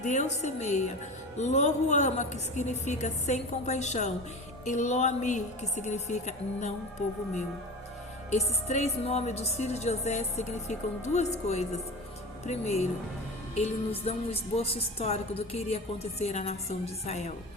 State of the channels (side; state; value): both; normal; correlation 0.30